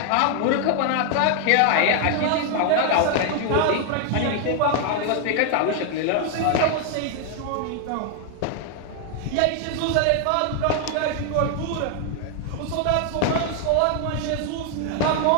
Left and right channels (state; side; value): different; both; correlation 0.00